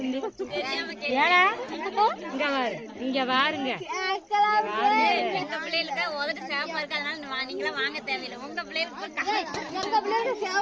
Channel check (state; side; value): identical; both; correlation 1.00